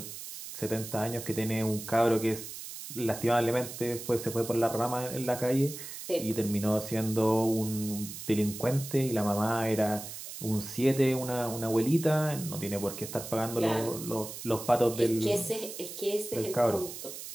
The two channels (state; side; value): noise; right; hiss, 10 dB below the sound